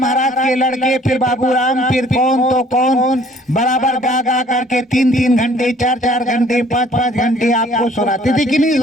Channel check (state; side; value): normal; both; correlation 0.57